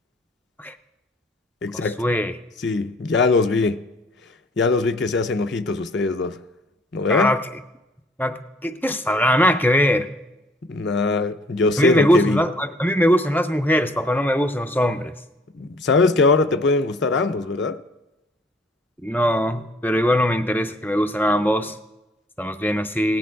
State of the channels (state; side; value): normal; both; correlation 0.58